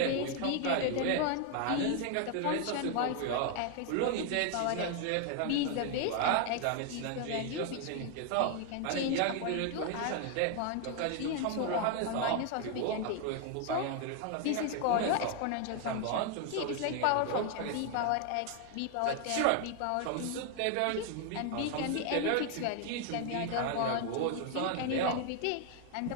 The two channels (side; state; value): both; different; correlation 0.00